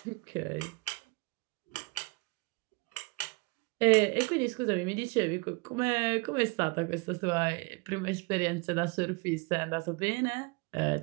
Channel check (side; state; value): left; quieter; 27.3 dB